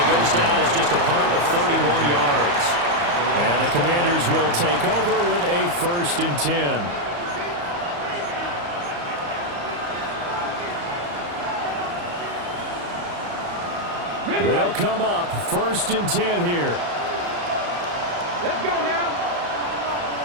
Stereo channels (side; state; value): left; late; 34 ms